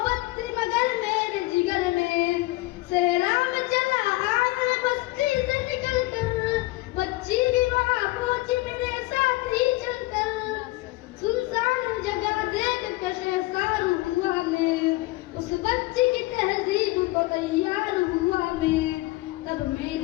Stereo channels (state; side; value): quieter; right; 20.5 dB